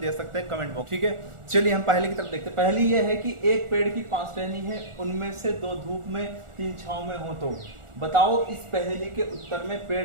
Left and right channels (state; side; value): late; left; 1.4 ms